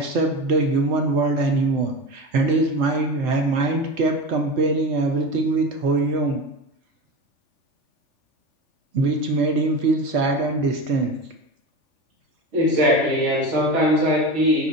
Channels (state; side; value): late; left; 3.4 ms